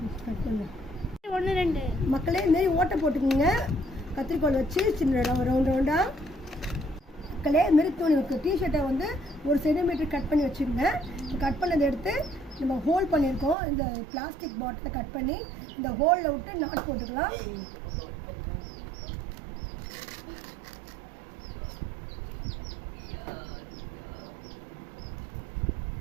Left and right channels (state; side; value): drops out; left; at 13.6 s